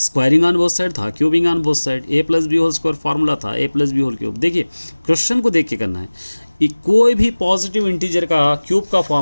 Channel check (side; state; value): both; inverted; correlation -1.00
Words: ऑन बोथ साइड था, cubing on both side. A plus B whole square formula था, A plus B whole cube. देखिए क्वेश्चन को देख के करना है। कोई भी पॉजिटिव इंटीजर का क्यूब का